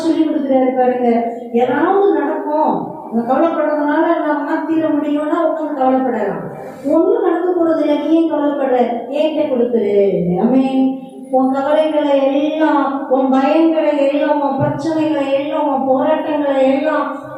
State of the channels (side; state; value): both; identical; correlation 1.00